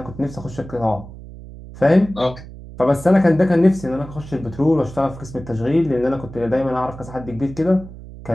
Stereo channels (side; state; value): right; noise; hum, 15 dB below the sound